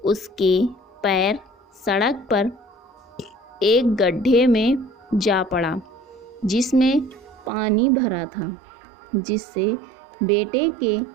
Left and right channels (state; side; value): drops out; left; at 7.5 s